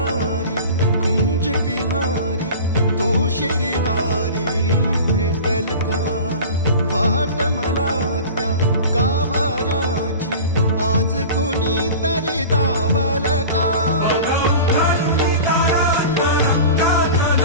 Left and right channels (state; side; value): inverted; both; correlation -0.36